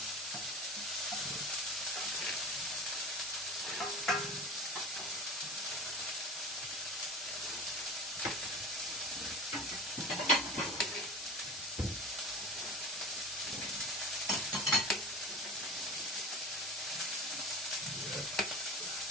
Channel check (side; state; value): both; normal; correlation 0.33